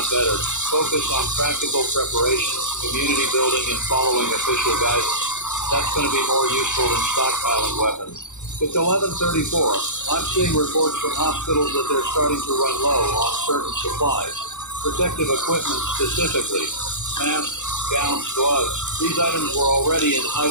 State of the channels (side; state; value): right; late; 0.85 ms